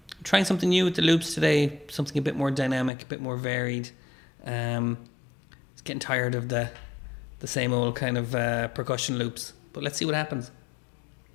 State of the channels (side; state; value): right; drops out; at 2.9 s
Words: Trying something new with the loops today. Something a bit more dynamic, a bit more varied. It's getting tired of the same old kind of percussion loops. But let's see what happens.